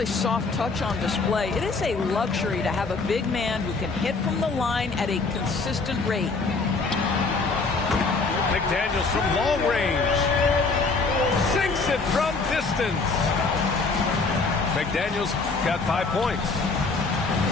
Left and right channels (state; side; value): quieter; right; 4.0 dB